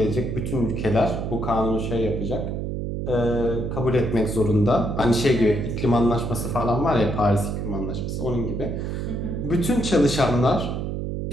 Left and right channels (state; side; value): noise; right; hum, 3 dB below the sound